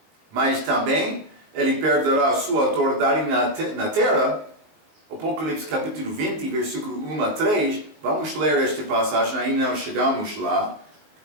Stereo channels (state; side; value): late; left; 19 ms